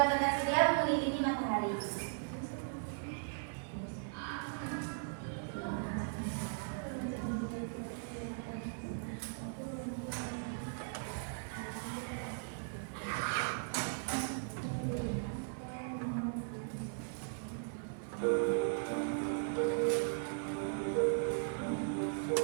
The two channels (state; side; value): silent; left; digital silence